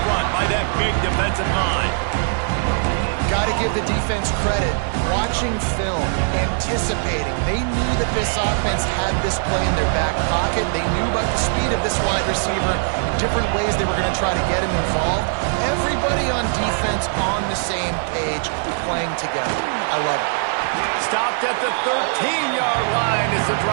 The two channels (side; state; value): left; silent; 65 dB below the other